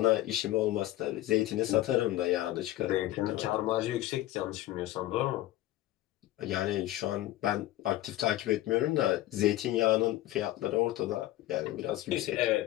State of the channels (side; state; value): right; quieter; 15.5 dB